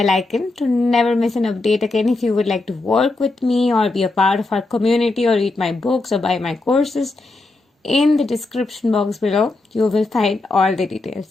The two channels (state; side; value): quieter; right; 3.2 dB